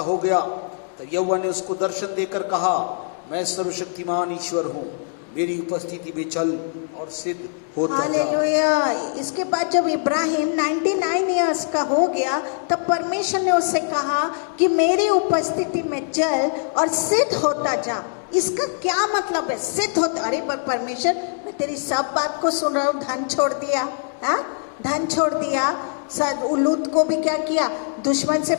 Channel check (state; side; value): silent; right; 64 dB below the other